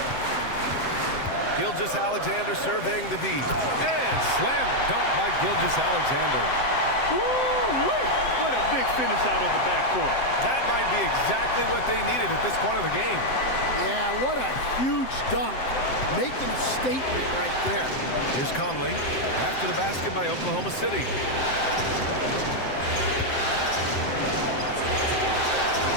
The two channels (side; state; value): right; late; 7.7 ms